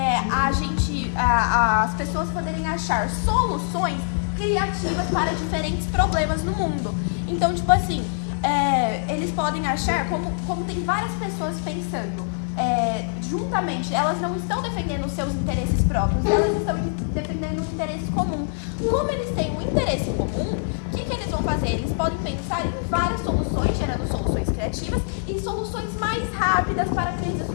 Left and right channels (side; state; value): right; silent; digital silence